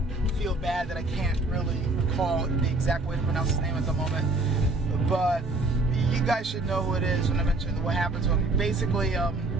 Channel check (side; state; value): left; quieter; 3.0 dB